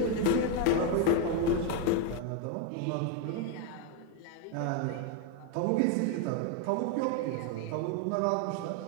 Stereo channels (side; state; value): both; different; correlation 0.02